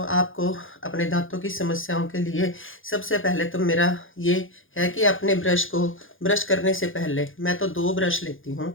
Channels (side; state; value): right; late; 0.58 ms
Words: अपने दांतों की समस्याओं के लिए सबसे पहले तो मेरा ये है कि अपने ब्रश को ब्रश करने से पहले मैं तो 2 ब्रश लेती हूँ